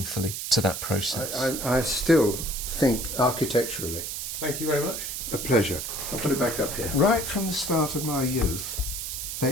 to that process. I still think architecturally. Thank you very much. A pleasure. I'll put it back up here. Right from the start of my youth,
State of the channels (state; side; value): noise; right; hiss, 5 dB below the sound